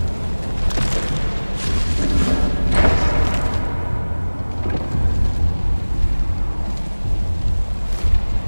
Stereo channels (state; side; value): inverted; both; correlation -1.00